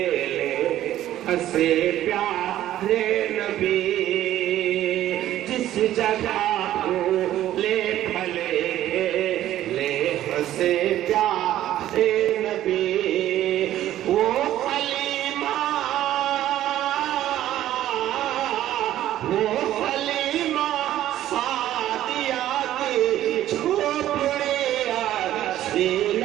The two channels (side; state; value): left; quieter; 13.0 dB